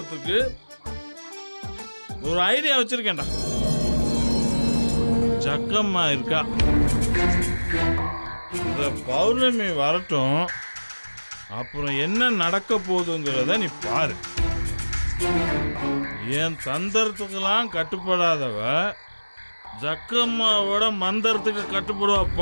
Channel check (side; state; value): both; inverted; correlation -1.00